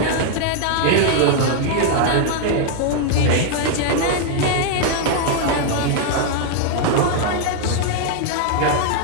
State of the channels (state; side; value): different; both; correlation 0.00